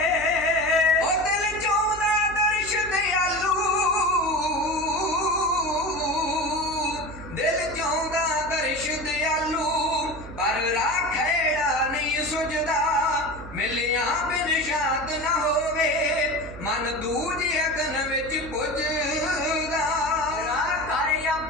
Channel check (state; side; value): noise; right; hum, 14 dB below the sound